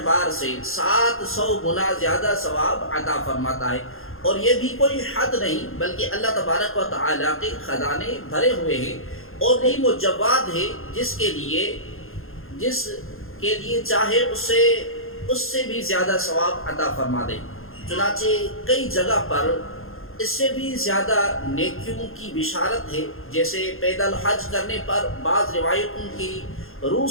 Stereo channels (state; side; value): late; right; 0.60 ms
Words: سے 700 گنا زیادہ ثواب عطا فرماتا ہے، اور یہ بھی کوئی حد نہیں بلکہ اللہ تبارک و تعالی کے خزانے بھرے ہوئے ہیں، اور یہی وہ جواد ہے جس کے لیے چاہے اس سے بھی زیادہ ثواب عطا فرما دے۔ چنانچہ کئی جگہ پر اس سے بھی زیادہ نیکیوں کی بشارت ہے، جیسے پیدل حج کرنے پر بعض روایتوں کی روح